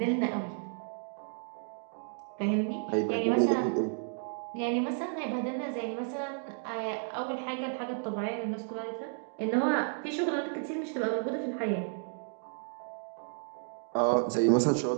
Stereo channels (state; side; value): silent; left; 56 dB below the other